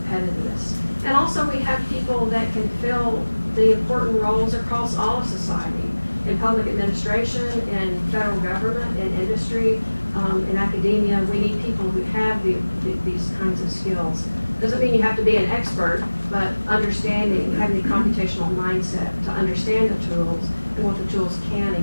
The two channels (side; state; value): both; inverted; correlation -1.00